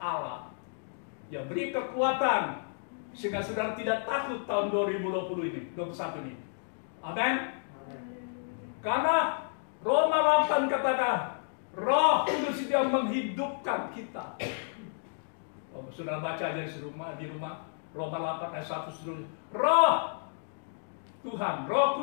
yang beri kekuatan sehingga saudara tidak takut tahun 2020 ini, 21 ini. Amin. Karena Roma 8 katakan, Roh Kudus itu yang menghidupkan kita. Saudara baca aja di rumah Roma 8 ayat 1 seterusnya. Roh Tuhan, Roh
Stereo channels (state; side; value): silent; right; digital silence